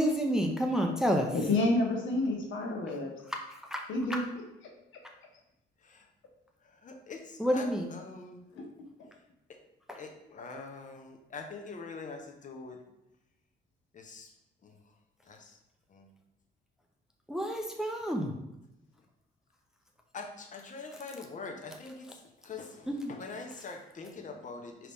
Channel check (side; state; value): both; normal; correlation 0.62